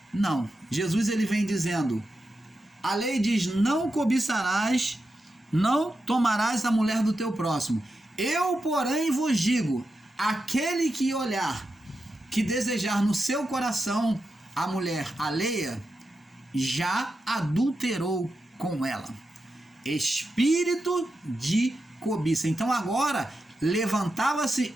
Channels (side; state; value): both; normal; correlation 0.88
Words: Não, Jesus ele vem dizendo, a lei diz: não cobiçarás, não tomarás a mulher do teu próximo. Eu, porém, vos digo, aquele que olhar, que desejar no seu coração a mulher alheia, já adulterou com ela. Espírito de cobiça. Então agora levantava-se